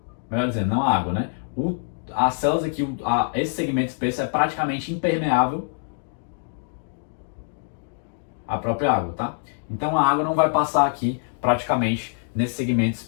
Melhor dizendo, não a água, né? As células aqui, esse segmento espesso é praticamente impermeável à própria água, tá? Então a água não vai passar aqui praticamente nesse segmento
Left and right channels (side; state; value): right; silent; digital silence